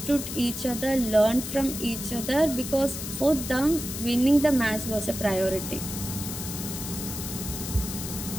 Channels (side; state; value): left; noise; hiss, 7 dB below the sound